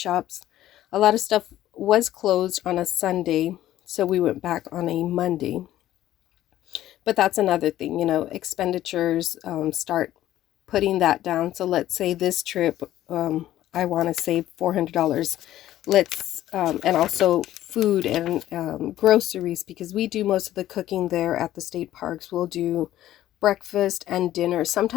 A lot of stuff was closed on a Sunday, so we went back on a Monday. But that's another thing, you know, expenditures, start putting that down. So let's say this trip, I want to save $400. Let's, and also food and groceries, because we do most of the cooking there at the state parks. We'll do breakfast and dinner,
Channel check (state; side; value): quieter; right; 13.5 dB